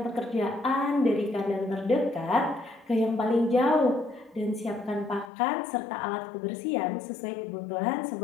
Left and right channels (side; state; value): right; drops out; at 5.3 s